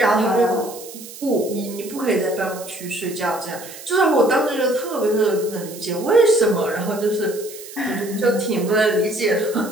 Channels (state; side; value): noise; right; hiss, 15 dB below the sound